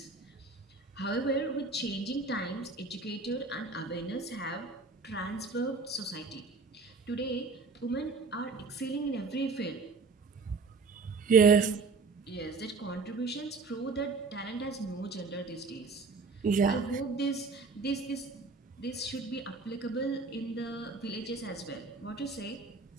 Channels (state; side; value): quieter; left; 4.2 dB